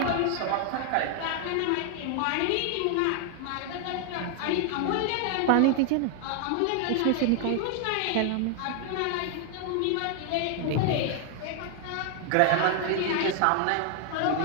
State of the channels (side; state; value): both; different; correlation 0.00